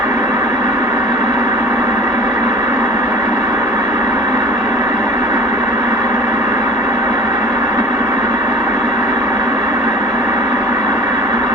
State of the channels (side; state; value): both; normal; correlation 0.43